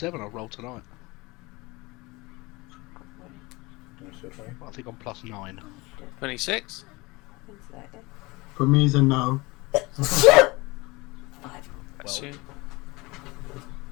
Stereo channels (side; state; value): right; quieter; 23.7 dB